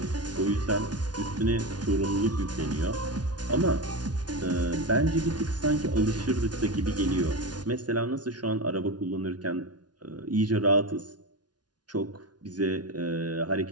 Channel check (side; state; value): left; late; 0.69 ms